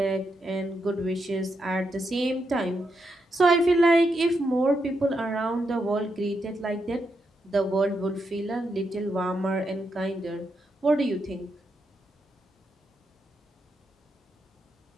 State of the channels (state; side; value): normal; both; correlation 0.82